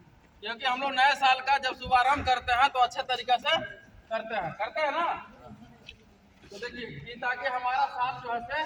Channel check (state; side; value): identical; both; correlation 1.00